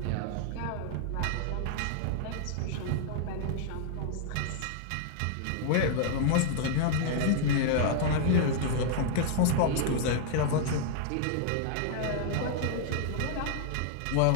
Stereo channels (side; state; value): both; different; correlation 0.00